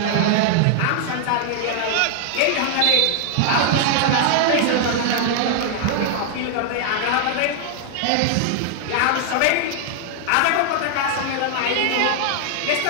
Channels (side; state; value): both; different; correlation 0.00